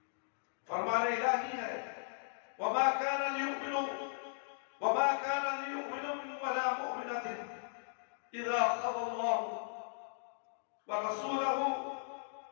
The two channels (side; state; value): right; silent; digital silence